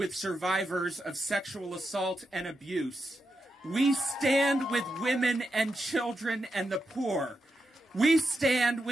survivors of sexual assault and abuse. We stand with women and children and the poor. We stand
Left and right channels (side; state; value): both; normal; correlation 0.86